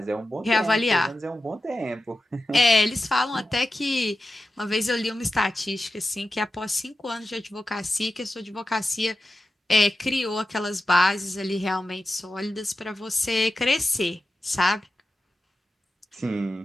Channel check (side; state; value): both; normal; correlation 0.92